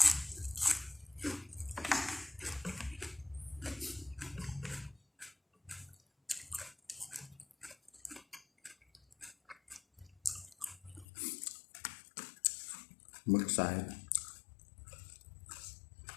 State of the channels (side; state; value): right; drops out; at 11.1 s